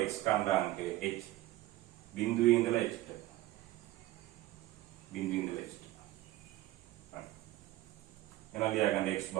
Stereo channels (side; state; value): left; quieter; 16.6 dB